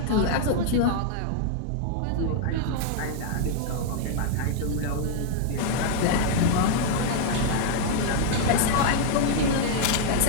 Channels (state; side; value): different; both; correlation 0.00